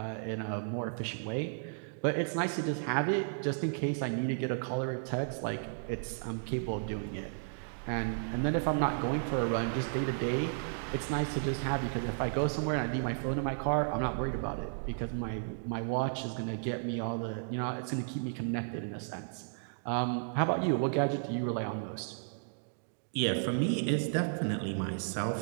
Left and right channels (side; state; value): left; silent; digital silence